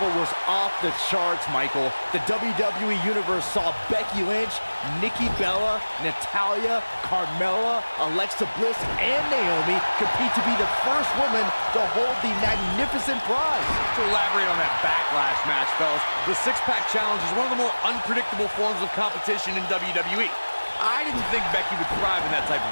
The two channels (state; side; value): inverted; both; correlation -1.00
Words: was off the charts, Michael. The WWE Universe saw Becky Lynch, Nikki Bella, Natalya, Carmella, Alexa Bliss, and Naomi compete to be the first woman to hold the magnificent prize. To elaborate on that Backlash match, fellas, the six-pack challenge is one of the more unpredictable forms of competition in WWE. I didn't think Becky would thrive in that type of